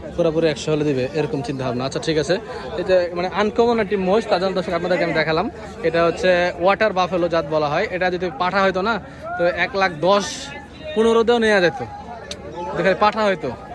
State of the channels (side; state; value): both; identical; correlation 1.00